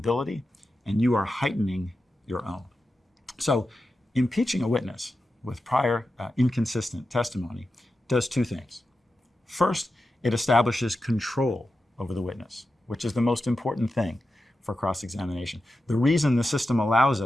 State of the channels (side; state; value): both; normal; correlation 0.90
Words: and you are heightening your own. So impeaching a witness with prior inconsistent testimony does two things. First, it establishes control over the witness, which is the most important thing for cross-examination. The reason the system allows